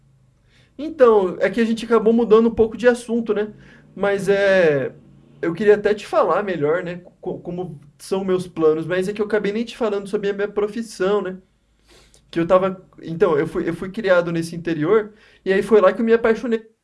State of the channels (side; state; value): both; identical; correlation 1.00